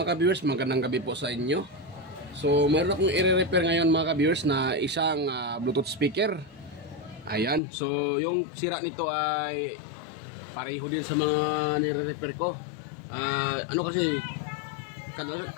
ka-viewers, magandang gabi po sa inyo. So meron akong i-repair ngayon mga ka-viewers na isang Bluetooth speaker. Ayan, so yung sira nito ay pareho din sa mga nire-repair ko. Kasi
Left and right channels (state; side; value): drops out; right; at 7.6 s